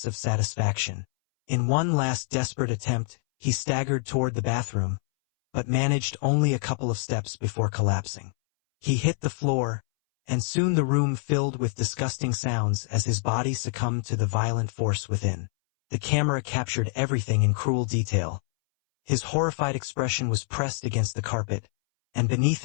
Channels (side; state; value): right; silent; 61 dB below the other